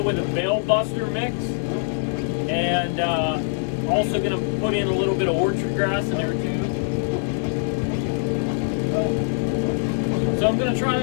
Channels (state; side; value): silent; right; 63 dB below the other